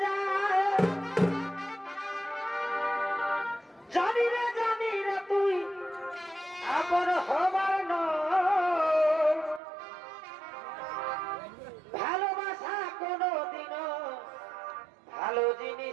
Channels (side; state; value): left; drops out; at 9.6 s